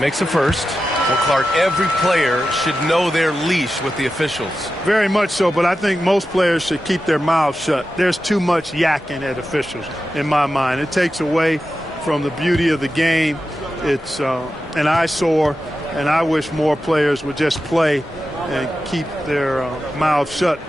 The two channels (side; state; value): both; normal; correlation 0.92